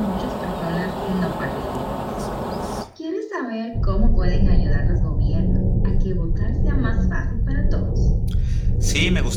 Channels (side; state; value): both; identical; correlation 1.00